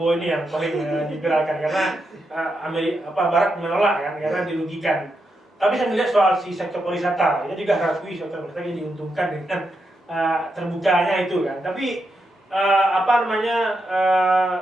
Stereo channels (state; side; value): normal; both; correlation 0.84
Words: ini yang paling diviralkan karena Barat menolak kan karena dirugikan. Tapi saya melihat soal si sektor pariwisata, itu juga harus sektor pariwisata yang diuntungkan dengan terbukanya itu kan. Tapi